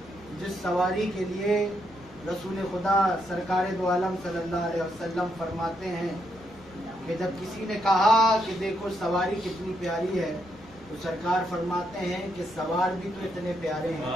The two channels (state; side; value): normal; both; correlation 0.79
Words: जिस सवारी के लिए रसूल खुदा सरकार दो आलम सल्लल्लाहु अलैहि वसल्लम फरमाते हैं कि जब किसी ने कहा कि देखो सवारी कितनी प्यारी है, तो सरकार फरमाते हैं कि सवार भी तो इतने प्यारे हैं।